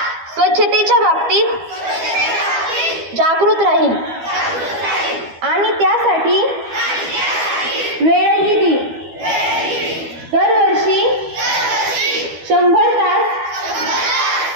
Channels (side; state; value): left; late; 12 ms